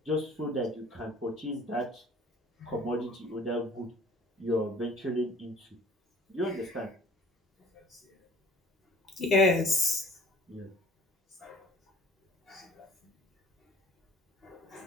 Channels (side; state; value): both; normal; correlation 0.51